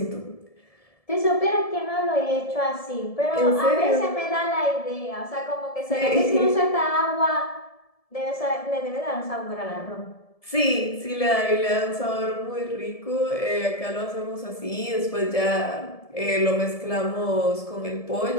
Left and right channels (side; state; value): right; late; 1.7 ms